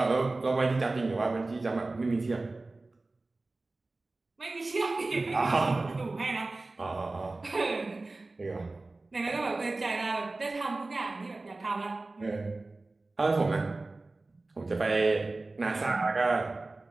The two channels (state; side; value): quieter; left; 3.2 dB